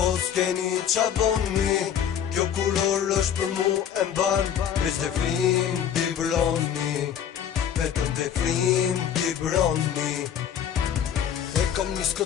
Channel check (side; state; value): right; quieter; 8.9 dB